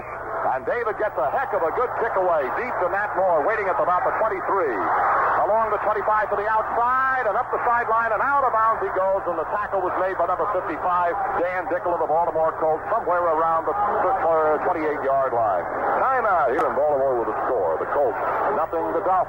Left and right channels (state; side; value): identical; both; correlation 1.00